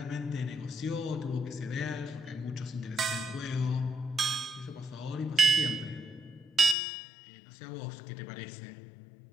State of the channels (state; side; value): drops out; right; at 6.8 s